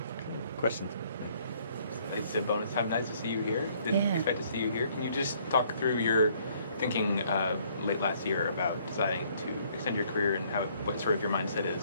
Questions? It's a bonus time. Nice to see you here. Didn't Yeah. expect to see you here. Can you just talk through your thinking late last year about deciding to extend your career and what sort of your mindset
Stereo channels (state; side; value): inverted; both; correlation -0.64